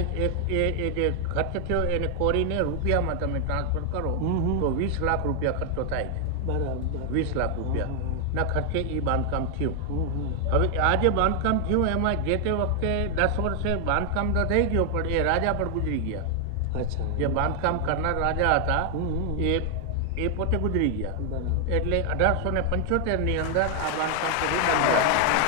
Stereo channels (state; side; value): different; both; correlation 0.00